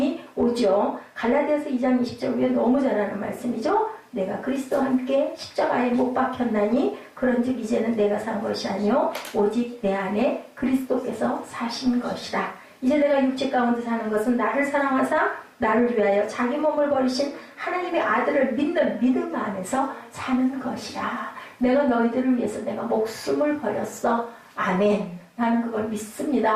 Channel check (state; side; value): identical; both; correlation 1.00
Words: 오죠. 갈라디아서 2장 20절 위에 너무 잘하는 말씀이죠. 내가 그리스도와 함께 십자가에 못 박혔나니 그런즉 이제는 내가 산 것이 아니요 오직 내 안에 그리스도께서 사신 것이라. 이제 내가 육체 가운데 사는 것은 나를 사랑하사 나를 위하여 자기 몸을 버리신 하나님의 아들을 믿는 믿음 안에서 사는 것이라. 내가 너희들을 위해서 내가 목숨을 버렸어. 아멘. 나는 그걸